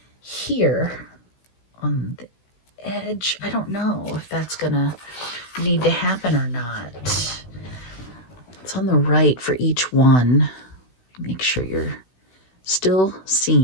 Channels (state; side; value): late; right; 16 ms